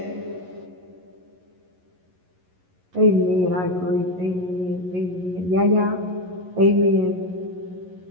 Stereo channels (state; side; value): late; left; 11 ms